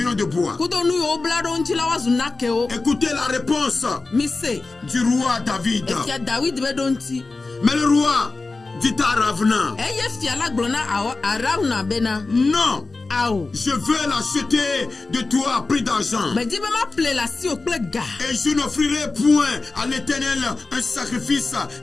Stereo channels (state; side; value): quieter; right; 3.6 dB